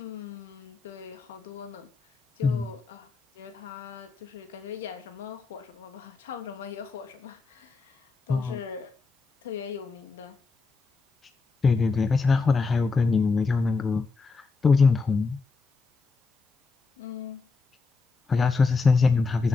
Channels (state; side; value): quieter; right; 4.3 dB